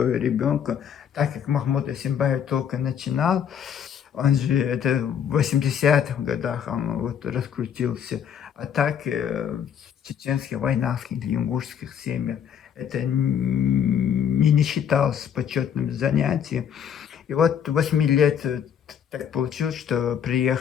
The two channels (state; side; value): quieter; right; 8.5 dB